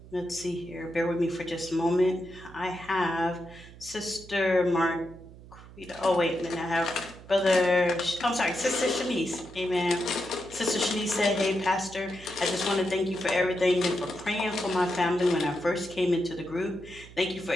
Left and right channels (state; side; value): noise; right; hum, 19 dB below the sound